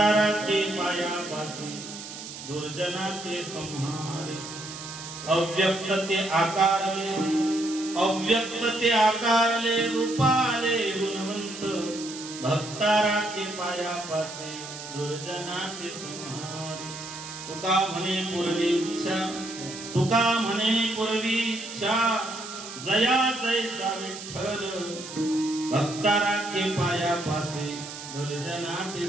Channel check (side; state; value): right; noise; hiss, 11 dB below the sound